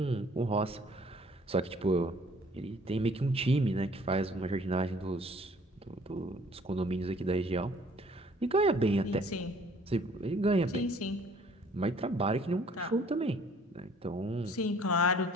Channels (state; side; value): normal; both; correlation 0.57